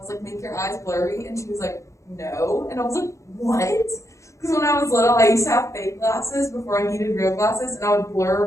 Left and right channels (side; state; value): right; late; 0.15 ms